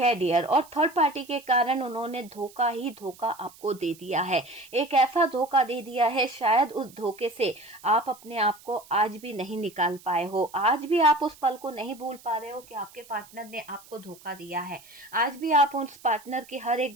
डियर। और थर्ड पार्टी के कारण उन्होंने धोखा ही धोखा आपको दे दिया है, एक ऐसा धोखा दे दिया है शायद उस धोखे से आप अपने आप को आज भी नहीं निकाल पाए हो, आज भी आप उस पल को नहीं भूल पा रहे हो कि आपके पार्टनर ने आपको धोखा दिया है, आज भी आप उस पार्टनर की हर एक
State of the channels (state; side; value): noise; right; hiss, 23 dB below the sound